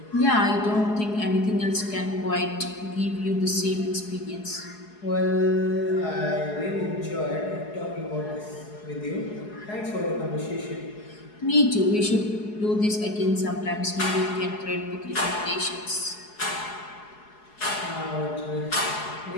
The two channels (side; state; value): right; late; 4.8 ms